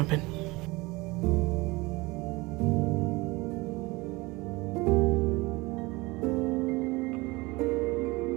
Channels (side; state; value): left; quieter; 23.0 dB